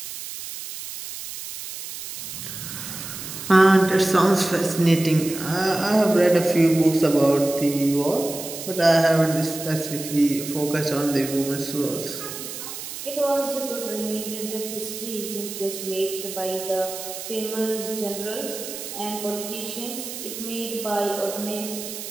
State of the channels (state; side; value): noise; right; hiss, 9 dB below the sound